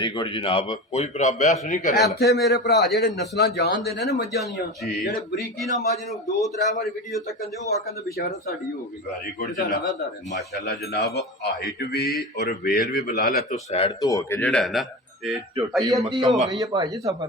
ਗੁੱਡ ਜਨਾਬ। ਕੋਈ ਭਰਾ ਬਹਿਸ ਨਹੀਂ ਕਰੇਗਾ। ਇੱਥੇ ਮੇਰੇ ਭਰਾ ਜਿਹੜੇ ਨਸਲਾਂ ਜਾਣਦੇ ਨੇ ਨਾ ਮੱਝਾਂ ਦੀਆਂ, ਜੀ। ਜਿਹੜੇ ਬਰੀਕੀ ਨਾਲ ਮੱਝ ਨੂੰ 2-3 ਵਾਰੀ ਵੀਡੀਓ ਤੱਕ ਦੇ ਉਹ ਆਖਣ ਬਿਸ਼ਾਰਤ ਸਾਡੀ ਹੋ ਗਈ। ਵੈਰੀ ਗੁੱਡ ਇਹਦਾ ਜਨਾਬ। ਲਗਾਤਾਰ ਹੈ। ਮਾਸ਼ਾਅੱਲਾ ਜਨਾਬ ਹਾਈਟ ਵੀ ਔਰ ਵੇਲ ਵੀ ਬਲਾ ਲੈ ਤੋਂ ਸਾਈਡ ਤੋਂ ਹੋ ਕੇ ਜਿਹੜਾ ਹੈ ਨਾ ਇਹ ਝੋਟੀ ਅੱਧੀ ਹੋ ਮੁਕੰਮਲ, ਗਈ ਹੈ ਭਾਈ ਜੀ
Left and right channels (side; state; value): both; normal; correlation 0.27